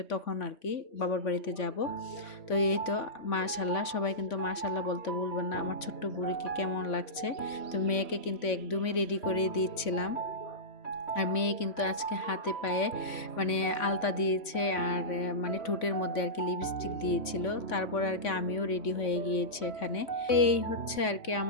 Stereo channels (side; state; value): right; late; 3.5 ms